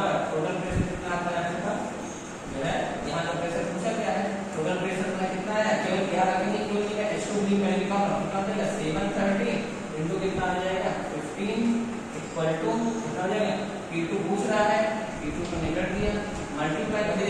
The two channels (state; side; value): identical; both; correlation 1.00